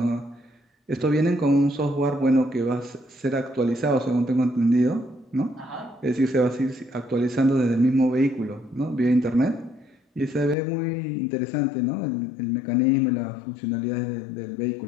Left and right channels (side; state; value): right; drops out; at 10.6 s